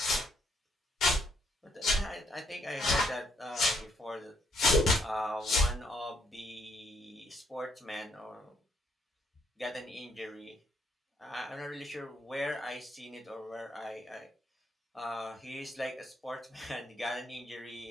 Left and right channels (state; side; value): normal; both; correlation 0.72